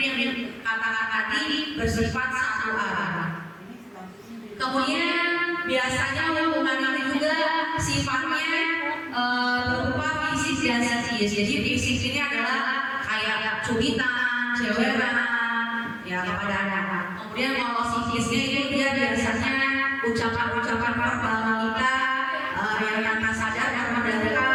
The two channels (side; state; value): both; identical; correlation 1.00